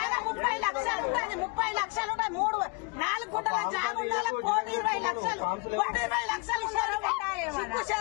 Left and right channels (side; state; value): right; quieter; 30.5 dB